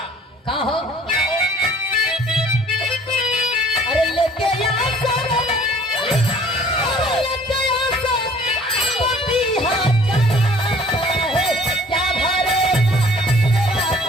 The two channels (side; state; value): both; normal; correlation 0.53